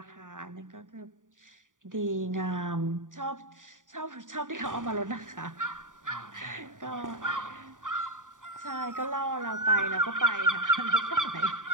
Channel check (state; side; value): late; left; 0.88 ms